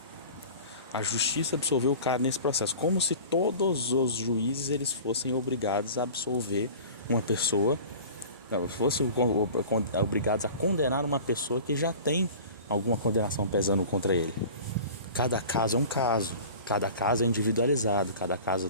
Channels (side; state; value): both; inverted; correlation -0.40